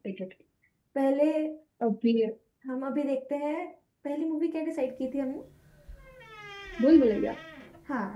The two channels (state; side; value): identical; both; correlation 1.00